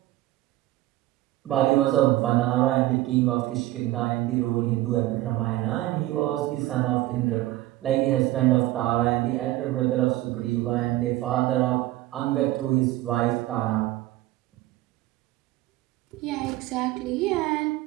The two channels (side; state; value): left; quieter; 16.5 dB